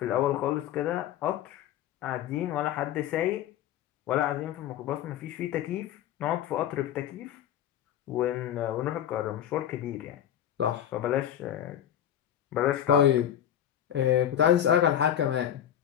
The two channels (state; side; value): quieter; right; 10.6 dB